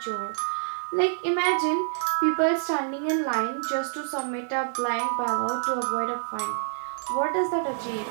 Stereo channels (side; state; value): left; silent; digital silence